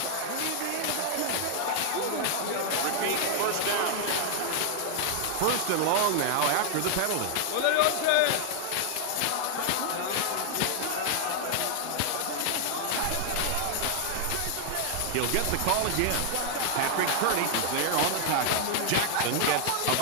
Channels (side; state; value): both; different; correlation 0.00